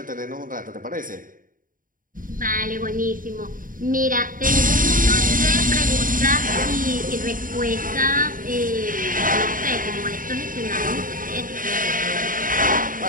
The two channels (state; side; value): late; left; 0.40 ms